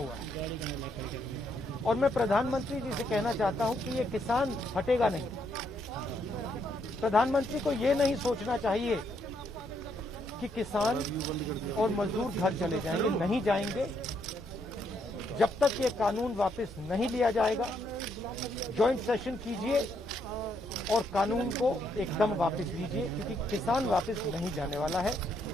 है। और मैं प्रधानमंत्री जी से कहना चाहता हूं कि ये किसान हटेगा नहीं। प्रधानमंत्री को ये नहीं सोचना चाहिए कि किसान और मजदूर घर चले जाएंगे, नहीं जाएंगे। जब तक ये कानून वापस नहीं लिया जाएगा, जॉइंट सेशन कीजिए और कानून को एकदम वापस लीजिए, क्योंकि किसान वापस नहीं जाने वाला है।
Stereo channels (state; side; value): normal; both; correlation 0.74